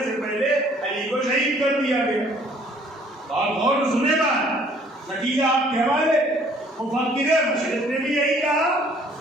سے پہلے علی کو شہید کر دیا گیا۔ اور غور سنے بات، نتیجہ آپ کے حوالے مفکر مشرق نے بھی یہی کہا،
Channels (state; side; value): normal; both; correlation 0.58